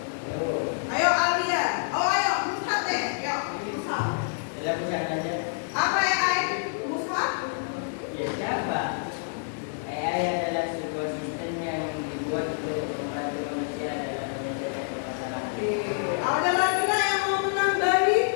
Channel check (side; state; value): right; silent; digital silence